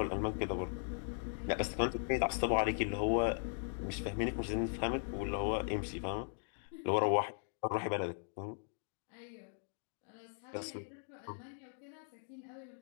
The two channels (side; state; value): right; silent; digital silence